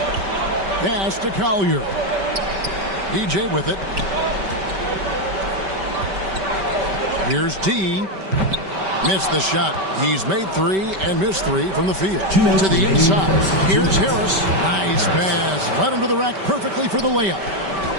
Pass to Collier. DJ with it. Here's D. Missed the shot. He's made 3 and missed 3 from the field. To the inside. Here's Harris. Nice pass. Led him to the rack perfectly for the layup.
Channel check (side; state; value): left; late; 5.2 ms